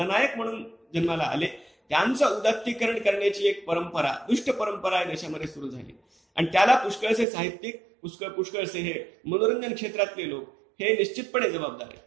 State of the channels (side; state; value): left; drops out; at 7.2 s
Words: म्हणून जन्माला आले, त्यांचं उदात्तीकरण करण्याची एक परंपरा, दुष्ट परंपरा या देशामध्ये सुरू झाली. आणि त्याला पुष्कळसे साहित्यिक, पुष्कळसे हे मनोरंजन क्षेत्रातले लोक हे निश्चितपणे जबाबदार आहेत.